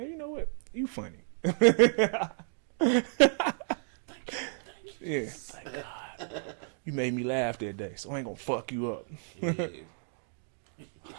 you know what? You funny. Thank you. Yeah. Like, you made me laugh that day, so I ain't gonna fuck you up. Yeah.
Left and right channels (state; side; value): silent; left; digital silence